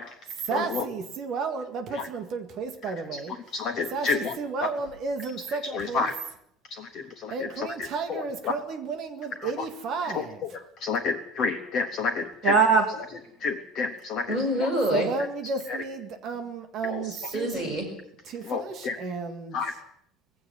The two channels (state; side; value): normal; both; correlation 0.38